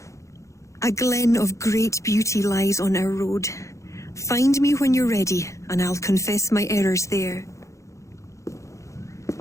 A glen of great beauty lies on our road. Find me when you're ready, and I'll confess my errors there.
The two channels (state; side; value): late; right; 0.15 ms